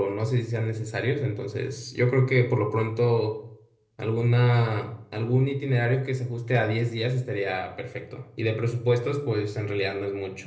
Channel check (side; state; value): both; identical; correlation 1.00